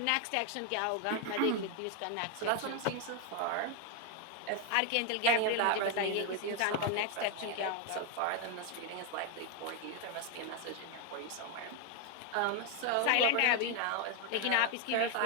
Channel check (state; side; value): different; both; correlation 0.01